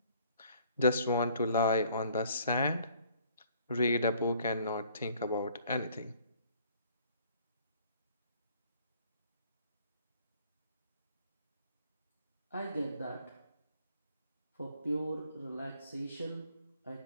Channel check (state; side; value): inverted; both; correlation -0.58